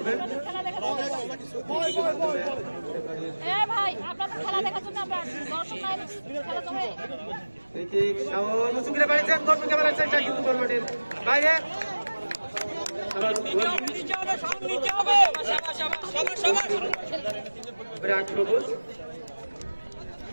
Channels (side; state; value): both; inverted; correlation -1.00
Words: শাওন মুসুকিরে বাড়িছেন, গোলকিপার বেড়াচ্ছেন কিন্তু গোল মাঠের বাইরে।